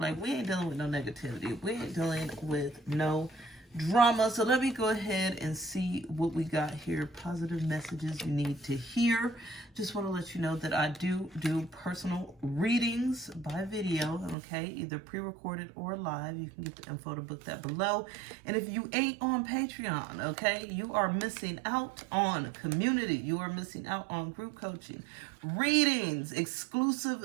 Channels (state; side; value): drops out; left; at 14.4 s